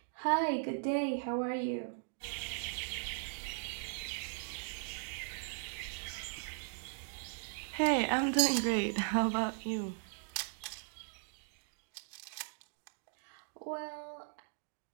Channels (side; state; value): left; silent; digital silence